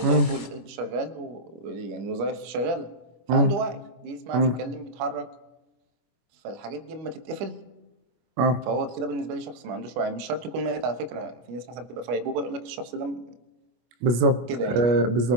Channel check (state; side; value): late; left; 25 ms